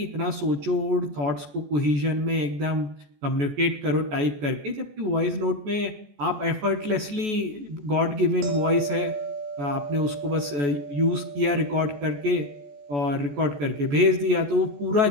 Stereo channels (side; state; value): left; late; 14 ms